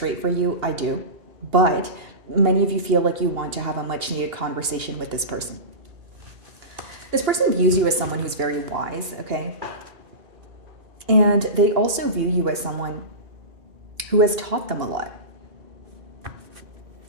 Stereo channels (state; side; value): late; left; 2.8 ms